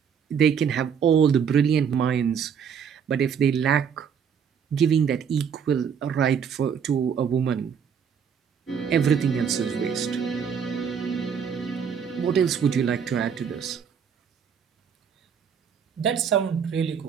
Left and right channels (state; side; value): quieter; left; 7.2 dB